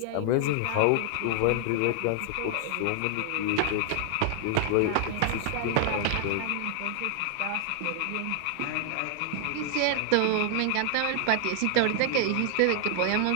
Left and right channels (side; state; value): both; different; correlation 0.00